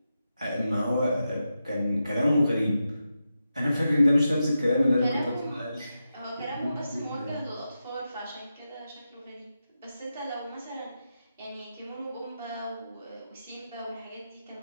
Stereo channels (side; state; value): both; inverted; correlation -0.89